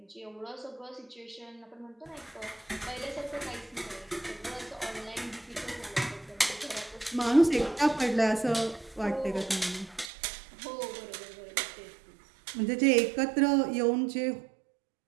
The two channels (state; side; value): drops out; left; at 10.1 s